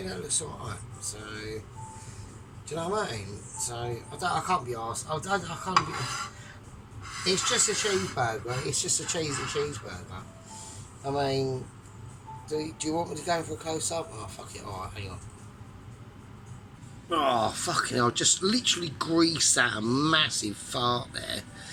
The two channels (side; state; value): both; identical; correlation 1.00